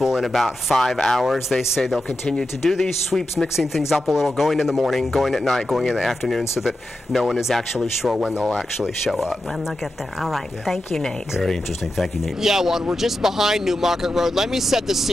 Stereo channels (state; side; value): normal; both; correlation 0.90